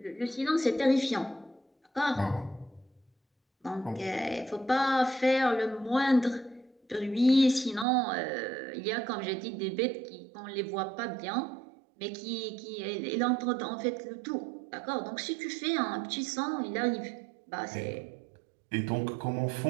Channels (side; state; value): left; drops out; at 7.9 s